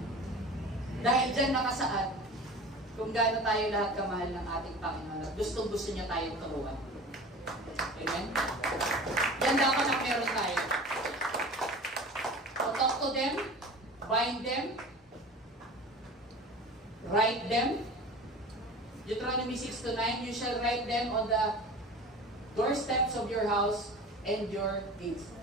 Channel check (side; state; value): both; normal; correlation 0.37